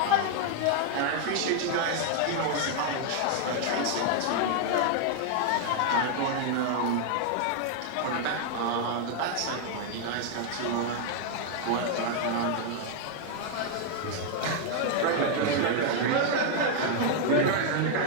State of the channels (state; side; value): different; both; correlation 0.00